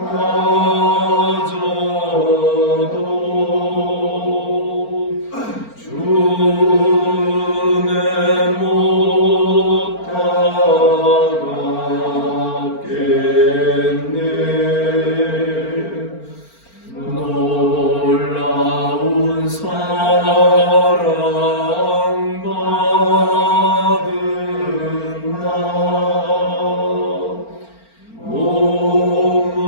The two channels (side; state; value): right; late; 4.4 ms